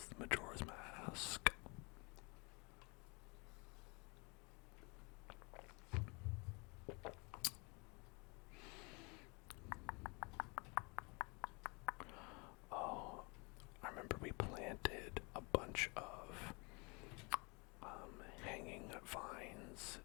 Majora's Mask. Oh, I remember we planted a bunch bunch of hanging vines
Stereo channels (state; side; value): quieter; right; 29.9 dB